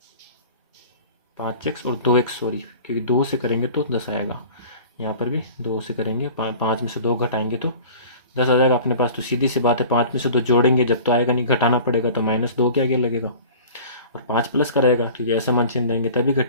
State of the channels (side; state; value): both; inverted; correlation -0.42